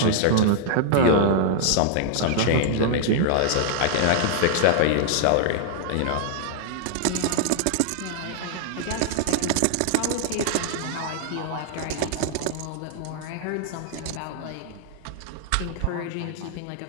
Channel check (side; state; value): both; different; correlation 0.00